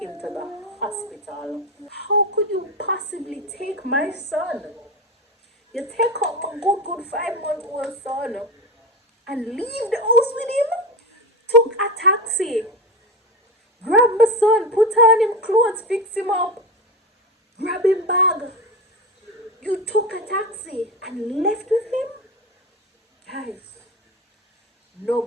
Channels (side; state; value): both; normal; correlation 0.22